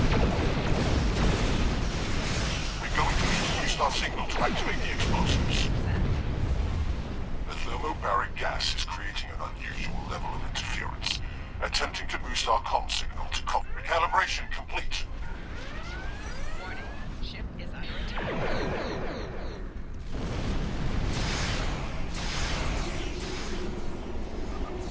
We're going to need to use our signal to activate the explosives. The thermobaric gas is creating an unusual level of interference, attempting to boost our comm signal to recalibration complete. Warning, ship is under attack.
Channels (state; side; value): identical; both; correlation 1.00